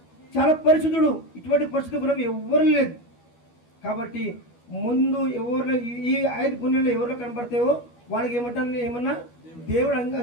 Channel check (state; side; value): late; right; 12 ms